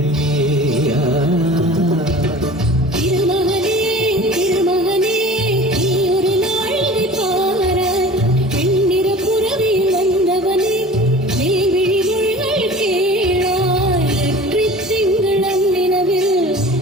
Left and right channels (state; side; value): normal; both; correlation 0.41